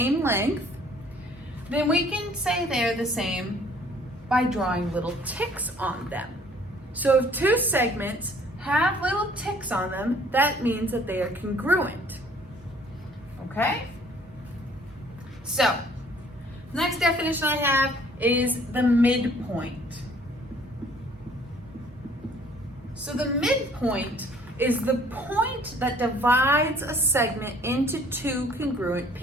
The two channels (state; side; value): normal; both; correlation 0.57